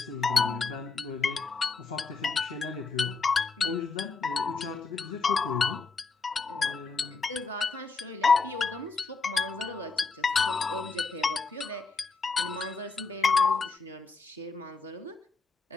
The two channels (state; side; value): quieter; right; 4.4 dB